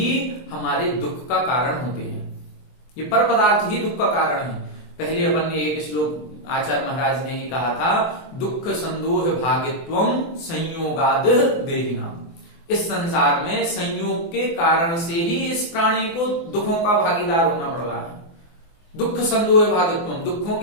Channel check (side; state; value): right; late; 24 ms